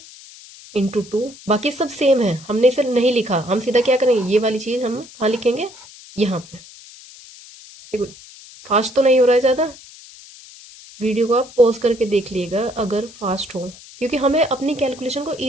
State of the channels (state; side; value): noise; left; hiss, 20 dB below the sound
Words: इंटू 2, बाकी सब सेम है, हमने इसे नहीं लिखा, हम सीधा क्या करेंगे, ये वाली चीज़ हम कहाँ लिखेंगे, यहाँ पे। देखो, फास्ट तो नहीं हो रहा है ज़्यादा, वीडियो को आप पॉज करके देख लीजिएगा अगर फास्ट हो, क्योंकि हमें अपनी कैलकुलेशन को